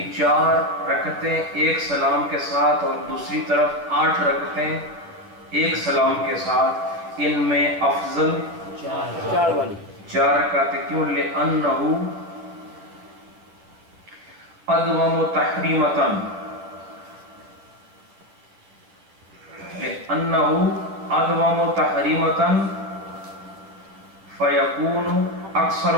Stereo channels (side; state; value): left; late; 10 ms